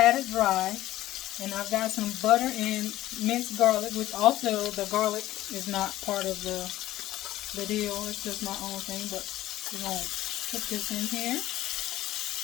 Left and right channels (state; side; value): quieter; right; 14.9 dB